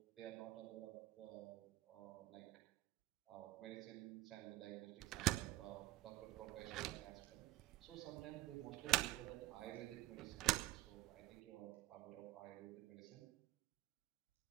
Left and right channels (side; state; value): left; quieter; 16.3 dB